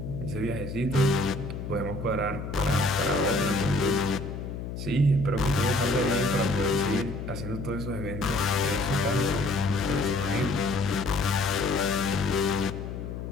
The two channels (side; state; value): left; noise; hum, 7 dB below the sound